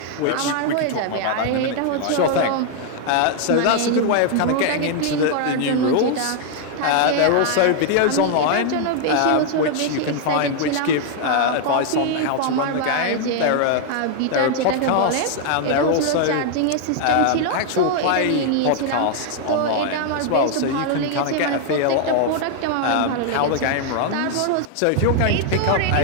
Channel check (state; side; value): different; both; correlation 0.00